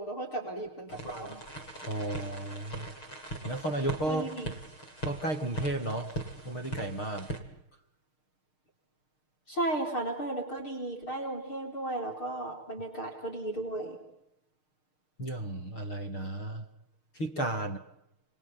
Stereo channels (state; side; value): late; right; 6.5 ms